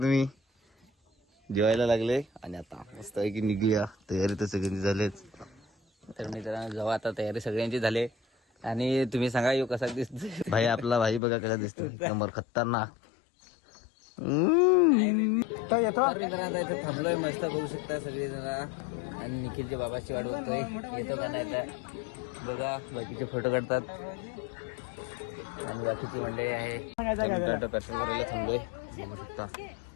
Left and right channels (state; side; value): drops out; right; at 11.2 s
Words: जेवायला लागले. आणि आता मस्त आहे की निघूया. तयारी तर सगळ्यांची झालीच. तर मित्रांनो जेव्हा आता तयारी सगळ्यांची झाली आणि तुम्ही सांगा यो कसा दिसतोय भाई. आपला भाई बघा कसा दिसतोय, नंबर खतरनाक. तर मित्रांनो इथे थांबलोय मस्त बघू शकता सगळे जण. आणि निखिलच्या बाबाची वाट बघतोय, येतो का नाही आता बघा. बाकीचे फोटो काढतात आणि बाकीची मंडळी आहे. पेट्रोल भरायला थांबलोय बघू शकता